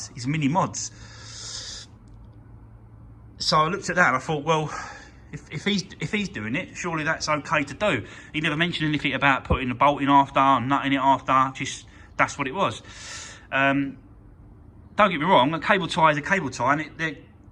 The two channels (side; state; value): both; identical; correlation 1.00